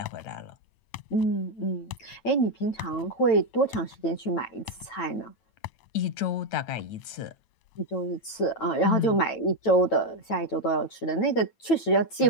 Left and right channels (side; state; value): right; late; 9.0 ms